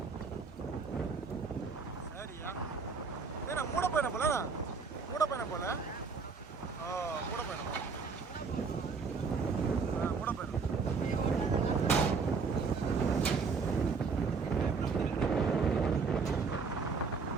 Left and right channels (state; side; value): quieter; left; 5.0 dB